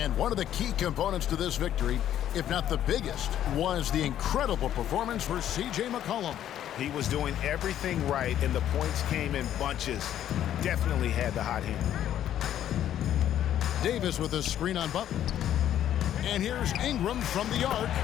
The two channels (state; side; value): quieter; right; 11.2 dB